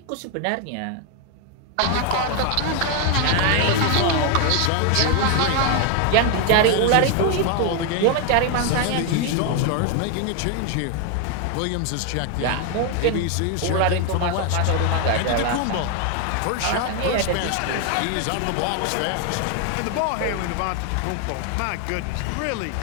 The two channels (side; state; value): both; different; correlation 0.01